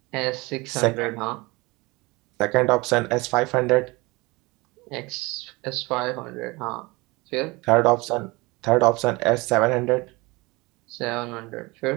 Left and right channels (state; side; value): quieter; left; 23.9 dB